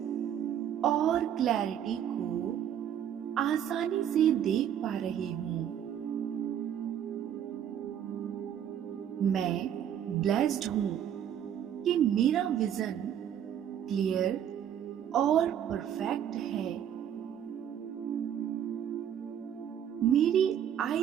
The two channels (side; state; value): left; quieter; 9.6 dB